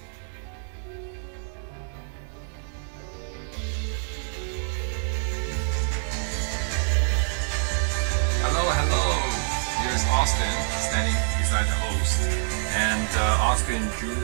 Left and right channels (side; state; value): left; silent; digital silence